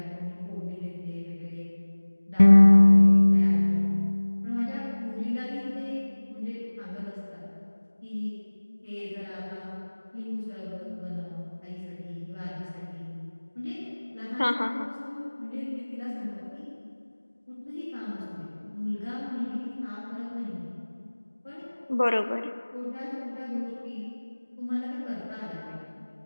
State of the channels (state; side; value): inverted; both; correlation -1.00